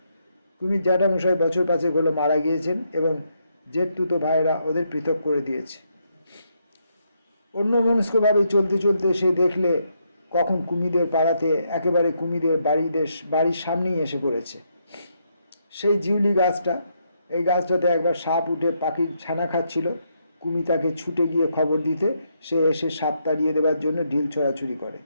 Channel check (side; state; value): both; inverted; correlation -0.77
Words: কুমির জ্যাঠামশাই বছর 5 হলো মারা গিয়েছেন এবং জেঠতুতো ভাইয়েরা ওদের পৃথক করে দিয়েছে। অন্যমনস্কভাবে চলতে চলতে সে দেখলে কখন কুমিদের পাড়াতে একেবারে কুমিদের বাড়ির সামনেই এসে পড়েছে সেই জিউলি গাছটা। এই গাছটাতে একবার সাপ উঠে পাখির ছানা খাচ্ছিল। কুমি তাকে ছুটে গিয়ে খবর দিতে সে এসে সাপ তাড়িয়ে দেওয়ার জন্য ঢিল ছোড়াছুড়ি করে।